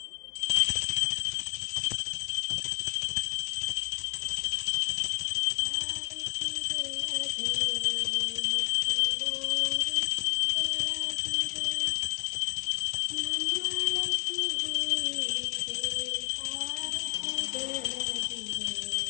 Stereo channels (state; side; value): quieter; right; 34.7 dB